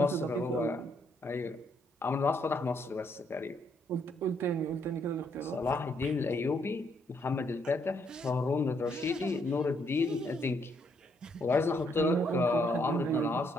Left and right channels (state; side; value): normal; both; correlation 0.72